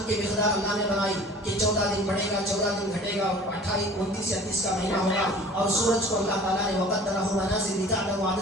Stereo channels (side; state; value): both; normal; correlation 0.45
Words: کی مقدار اللہ نے بنائی کہ 14 دن بڑھے گا، 14 دن گھٹے گا، 28 29 یا 30 کا مہینہ ہوگا. اور سورج کو اللہ تعالیٰ نے وقدرہ منازل لتعلموا